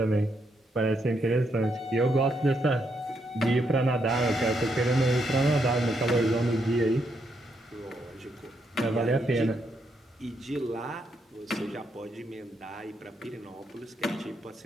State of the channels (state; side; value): normal; both; correlation 0.78